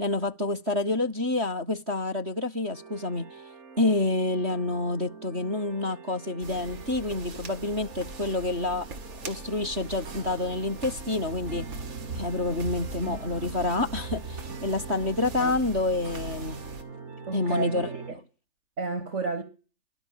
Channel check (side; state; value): left; late; 3.1 ms